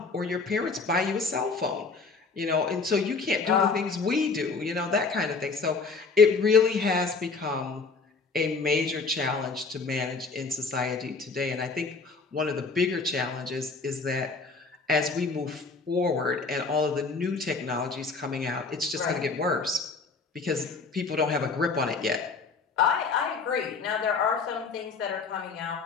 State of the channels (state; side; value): quieter; right; 4.4 dB